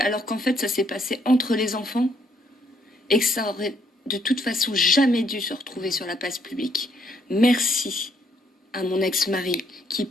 qu'en fait, ça s'est passé entre les enfants et que ça aurait de toute façon jamais dû se retrouver sur la place publique. Merci à mon ex-mari, qui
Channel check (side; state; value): both; normal; correlation 0.70